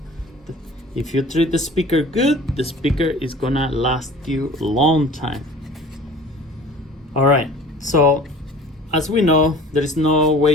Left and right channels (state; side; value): normal; both; correlation 0.44